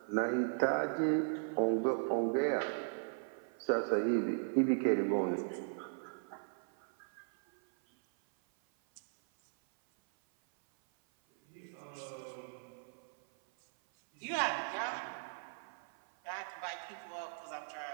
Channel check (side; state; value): left; silent; 53 dB below the other